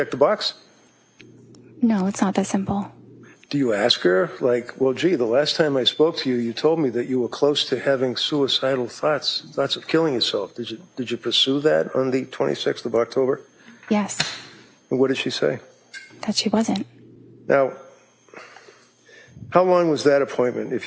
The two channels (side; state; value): both; identical; correlation 1.00